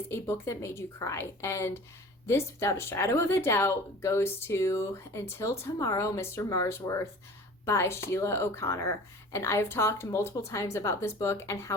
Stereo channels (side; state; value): both; normal; correlation 0.43